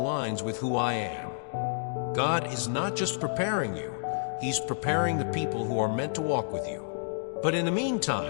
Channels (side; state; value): right; silent; digital silence